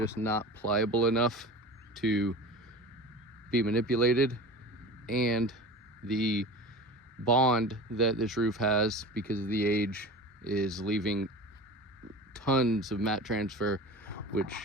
not pliable enough to be manipulated, and the bond that this roof has because of the age is leaving tons of mat transfer,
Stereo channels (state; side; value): normal; both; correlation 0.34